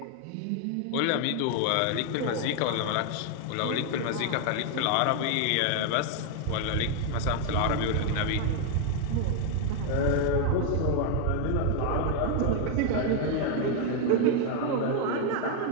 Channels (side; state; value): both; different; correlation 0.00